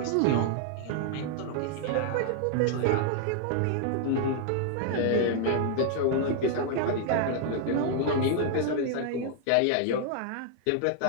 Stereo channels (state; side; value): different; both; correlation -0.01